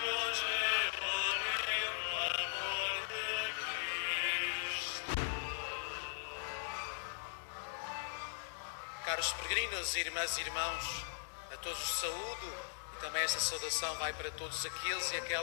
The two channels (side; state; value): right; silent; digital silence